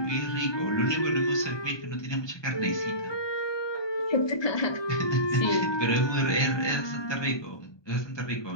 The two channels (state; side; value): late; right; 1.2 ms